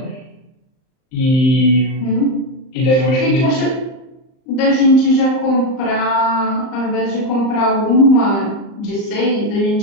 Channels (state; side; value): late; right; 38 ms